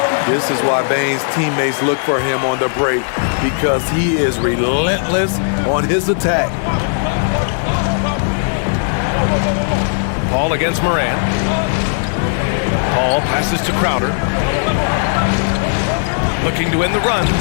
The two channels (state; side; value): silent; right; digital silence